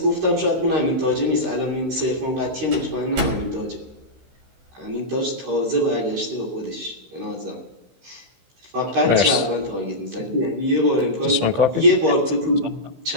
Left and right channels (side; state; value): left; late; 16 ms